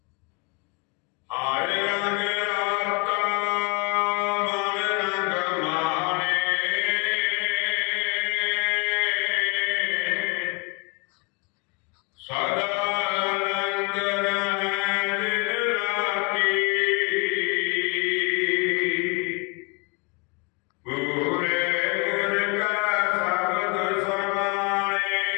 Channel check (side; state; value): right; quieter; 32.4 dB